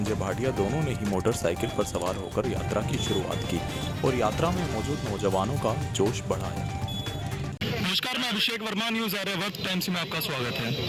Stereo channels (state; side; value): identical; both; correlation 1.00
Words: भाटिया दोनों ने ही मोटरसाइकिल पर सवार होकर यात्रा की शुरुआत की और यात्रा में मौजूद नौजवानों का जोश बढ़ाया। नमस्कार, मैं अभिषेक वर्मा, न्यूज आर्यावर्त टाइम्स में आपका स्वागत है।